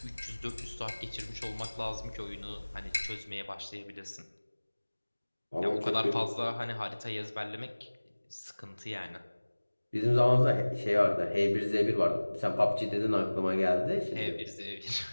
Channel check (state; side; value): inverted; both; correlation -1.00